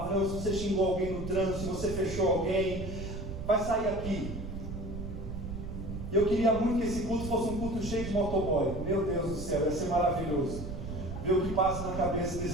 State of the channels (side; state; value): right; noise; rumble, 7 dB below the sound